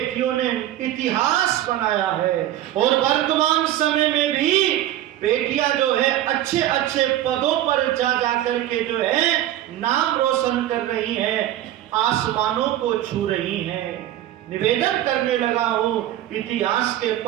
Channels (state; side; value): quieter; left; 13.2 dB